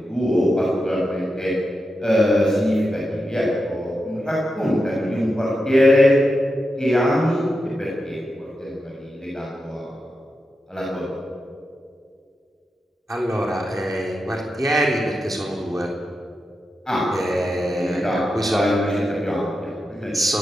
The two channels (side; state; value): both; normal; correlation 0.88